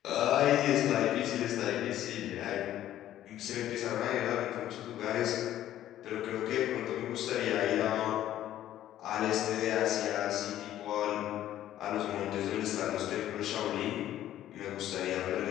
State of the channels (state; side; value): quieter; right; 12.6 dB